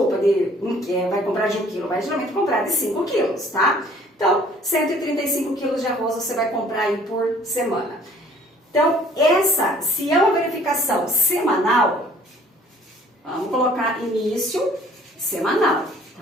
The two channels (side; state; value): both; normal; correlation 0.55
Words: vai comprar de 1 quilo, vai geralmente comprar de 5 quilos, tá? Então, 135 quilos de arroz você vai comprar aí por semana. Então, se é uma verificação semanal, vamos colocar início semanal,